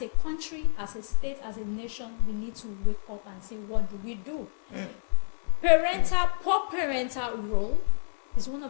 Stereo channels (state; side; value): silent; right; digital silence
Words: a country, as a state, as a nation, we need to wake up and say, what do we do? Poor parental role is one